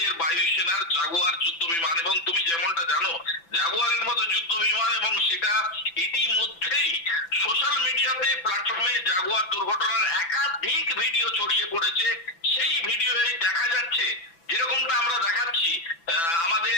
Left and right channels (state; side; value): late; right; 6.0 ms